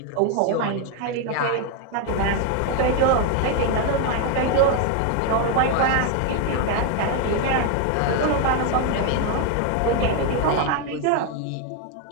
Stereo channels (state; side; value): different; both; correlation 0.01